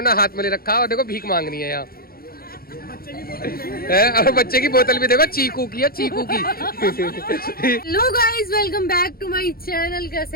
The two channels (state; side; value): late; right; 0.44 ms